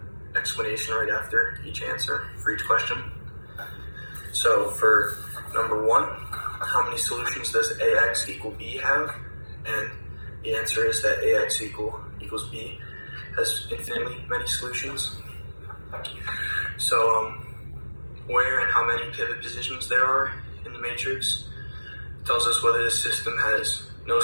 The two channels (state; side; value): inverted; both; correlation -1.00